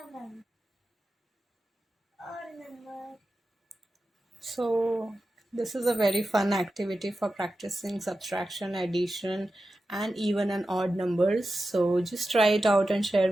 Odd number. So this is a very fun activity for practicing subtraction, addition, and even and odd numbers. So just try it out and share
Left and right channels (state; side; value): normal; both; correlation 0.92